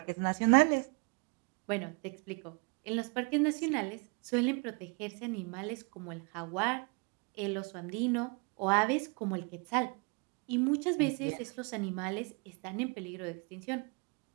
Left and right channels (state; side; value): quieter; left; 32.5 dB